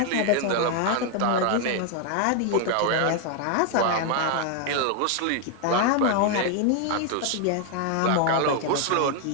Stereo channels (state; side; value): different; both; correlation 0.00